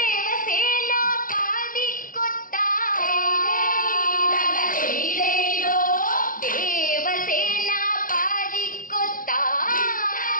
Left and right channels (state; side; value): late; right; 0.40 ms